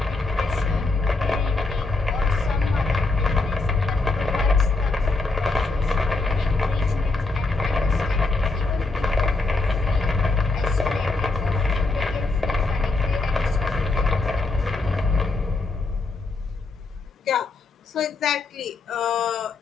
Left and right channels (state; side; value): quieter; right; 3.5 dB